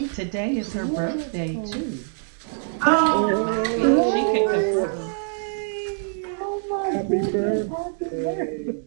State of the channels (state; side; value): silent; left; 59 dB below the other